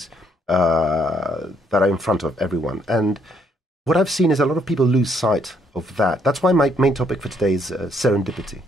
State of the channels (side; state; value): both; normal; correlation 0.70